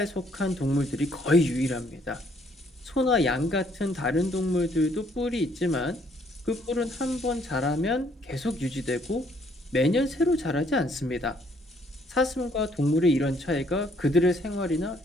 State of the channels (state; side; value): normal; both; correlation 0.66